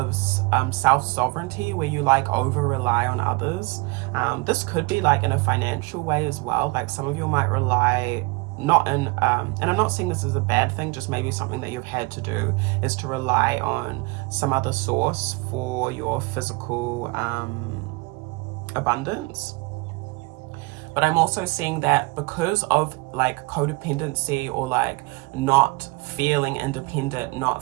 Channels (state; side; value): quieter; left; 25.8 dB